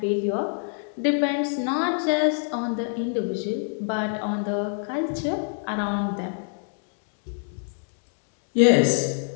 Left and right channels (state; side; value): silent; right; digital silence